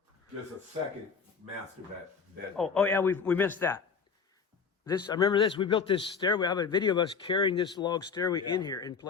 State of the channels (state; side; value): quieter; right; 5.7 dB